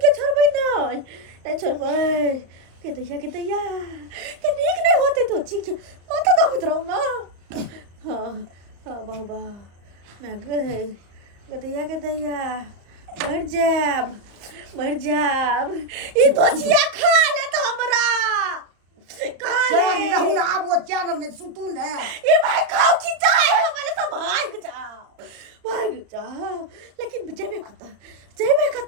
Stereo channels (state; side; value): late; left; 34 ms